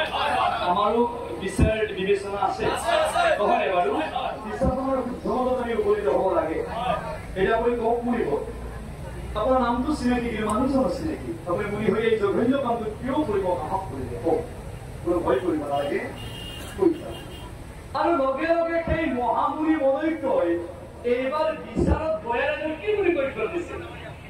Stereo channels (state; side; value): identical; both; correlation 1.00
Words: আমাৰো বিচাৰ বিবেচনা আছে নহয় বাৰু বিশ্বাসৰ শুদ্ধত আমি উপনীত হ'ব লাগে এটা আপুনি কওক মুনিব আপোনাৰ নামটো চিনাকি কি মানুহজন চিনাকি আপুনি মুনি হৈ এই জঘন্য কামটো কিয় কৰিব সাহস কৰিলে কওক কোনো ভয় কৰিব নালাগে আৰু লগে লগে সেই মহামুনি মনৈক্যই এইবাৰ বিচাৰত বয়াৰ কি বুলি কৈ দিছিল